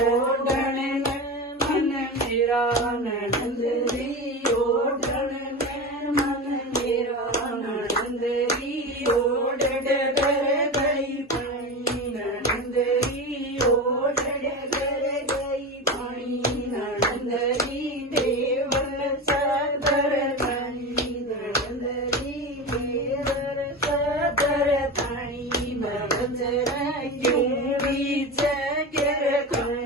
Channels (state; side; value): normal; both; correlation 0.24